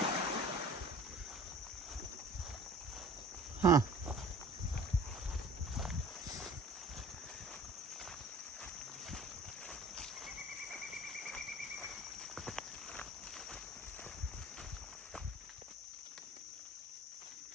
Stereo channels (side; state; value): both; normal; correlation 0.45